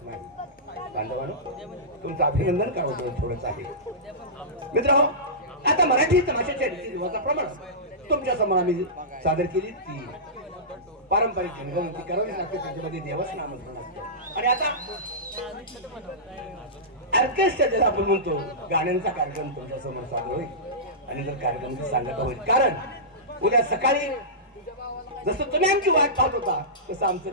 नाही. बांधवांनो, तुमचं अभिनंदन करावं थोडंच आहे. मित्रांनो, आता मराठी तमाशाच्या रीतिरिवाजा प्रमाणे तुमच्या समोर आम्ही सादर केली ती पारंपरिक रंगवंती करावी लागते. त्याच्यामध्ये देवाचं नामस्मरण असतं. आणि आता ऑर्केस्ट्रा ज्याला आपण म्हणतो, गाण्यांचा कार्यक्रम तुमच्या समोर सादर होईल. आणि जर कार्यक्रमाची सांगता होईल, कारण उद्या सकाळी जसं तुम्ही आमची वाट पाहत होता तसं आमचं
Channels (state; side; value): normal; both; correlation -0.18